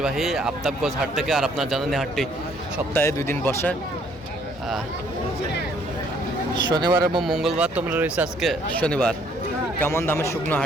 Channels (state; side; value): normal; both; correlation 0.64